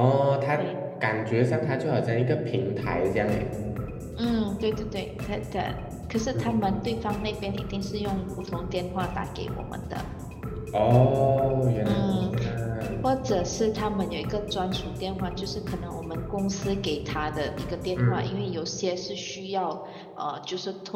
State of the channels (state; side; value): identical; both; correlation 1.00